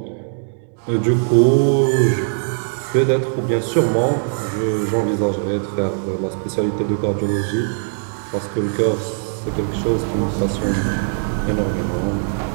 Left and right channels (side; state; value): left; silent; digital silence